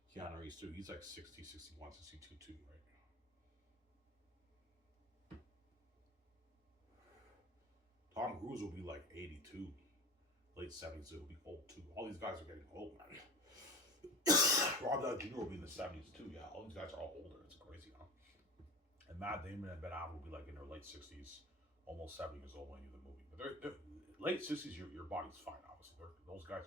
Keanu Reeves too. He's like 60, 61, 62 too, right? Tom Cruise will be like 82, late 70s. He'll be old too. All these guys are getting old, man. Rob Downey Jr. will be in the 70s too. Yeah, all these guys are all older. It's crazy, huh? And Matt Damon and Ben Affleck will be like in their late 60s, almost 70 years old when you do the movie. But they're late 60s, your body's fine, obviously. Those guys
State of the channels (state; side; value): normal; both; correlation 0.34